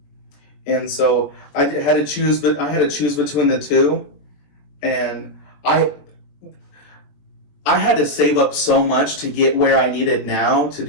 and so I had to choose, but I had to choose between the two, and I had to save up so much to get where I needed now to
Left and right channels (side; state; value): right; late; 21 ms